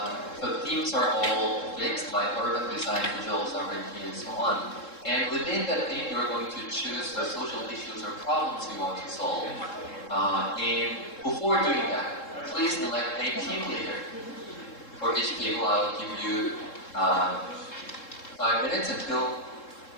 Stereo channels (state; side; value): late; right; 3.7 ms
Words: the themes are all fixed, like urban design, digital sovereignty, and so on. And within that theme, you're going to choose the social issues or problems you want to solve. And before doing that, please elect a team leader. For each table, I'll give you 5 minutes until